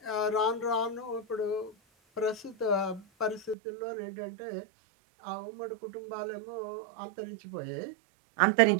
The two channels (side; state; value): left; drops out; at 3.6 s